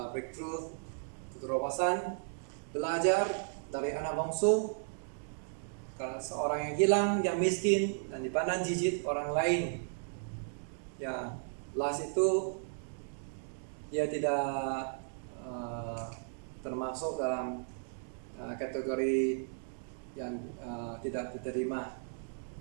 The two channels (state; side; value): silent; left; digital silence